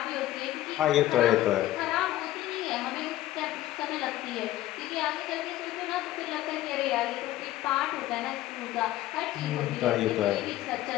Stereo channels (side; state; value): right; quieter; 14.7 dB